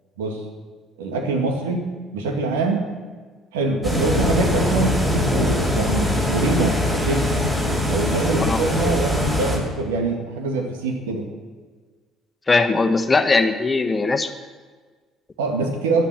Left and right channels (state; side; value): normal; both; correlation 0.55